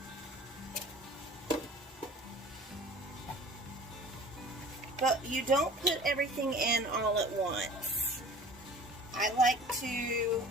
But you don't put everything in all at once. I like to,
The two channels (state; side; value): normal; both; correlation 0.43